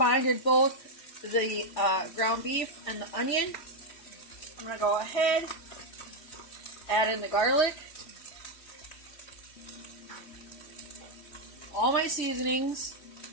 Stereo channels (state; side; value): late; right; 3.1 ms